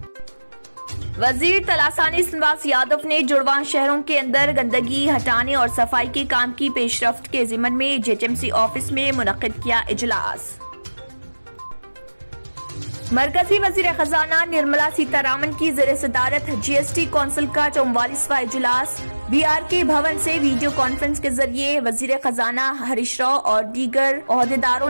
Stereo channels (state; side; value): inverted; both; correlation -1.00